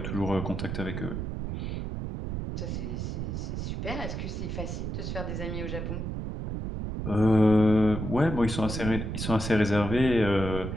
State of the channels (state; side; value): noise; right; rumble, 4 dB below the sound